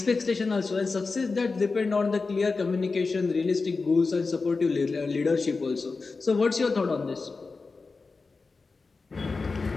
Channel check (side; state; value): right; quieter; 4.1 dB